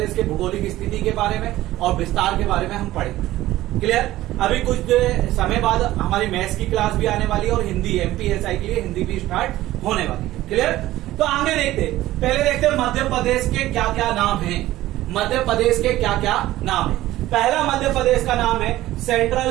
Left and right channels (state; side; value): quieter; left; 15.7 dB